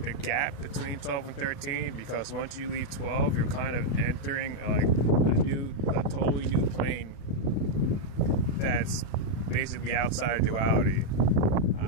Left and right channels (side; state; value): right; late; 36 ms